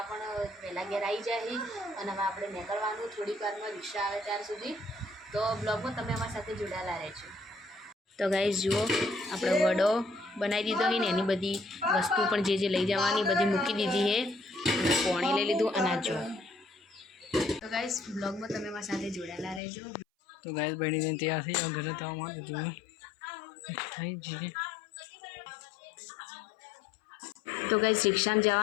પણ વહેલા ઘેર આવી જાય અને હવે આપણે નીકળવાનું થોડીક વારમાં રિક્ષા આવે ત્યાર સુધી। તો બ્લોગમાં તમે અમારી સાથે જોડાયેલા રહેજો। તો ગાઈસ જુઓ, આપણે વડો બનાવી દીધો છે ને એની બધી વસ્તુ પણ જે લઈ જવાની બધી મૂકી દીધી છે। પાણી લઈ લીધું અને જો तो गाइस ब्लॉग में તમે મારી સાથે જોડાયેલા રહેજો। तो गाइस बनी ने तैयार थी और घर तो मार दूँ થઈ जी। तो गाइस रिक्शा में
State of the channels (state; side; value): drops out; right; at 19.6 s